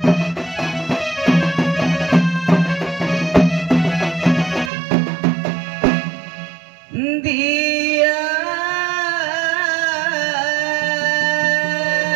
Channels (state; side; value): drops out; left; at 4.7 s